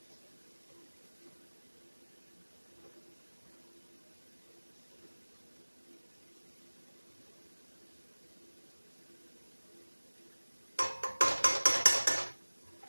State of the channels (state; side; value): inverted; both; correlation -1.00